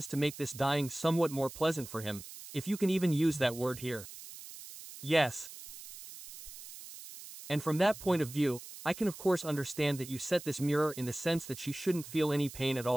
to make this dying somewhat more pleasant for him, if you can even use that word here. Yes. And from that point of view, I can of course understand that you set this mirror in the sense that she shouldn't feel any pain at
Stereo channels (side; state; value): right; noise; hiss, 14 dB below the sound